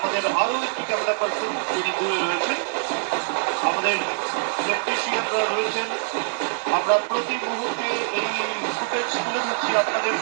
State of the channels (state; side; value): silent; left; digital silence